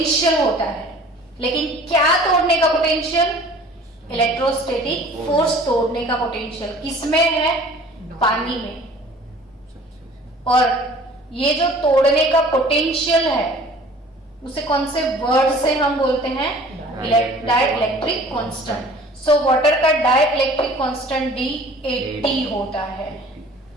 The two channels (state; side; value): normal; both; correlation 0.48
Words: होता है, लेकिन क्या तोड़ने का पोटेंशियल? इलेक्ट्रोस्टैटिक फोर्स तोड़ने का पोटेंशियल किसमें है? पानी में। और ये जो तोड़ने का पोटेंशियल है उसे कौन से वर्ड से हम बोलते हैं? Dielectric constant. सो वाटर का डाइलेक्ट्रिक कांस्टेंट D80 होता है।